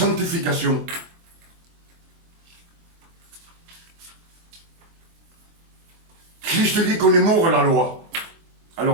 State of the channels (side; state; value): left; late; 24 ms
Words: Christ dit qu'on est mort à la loi.